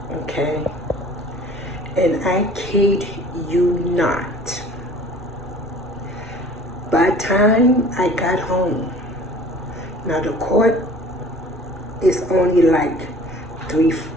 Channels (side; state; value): both; normal; correlation 0.48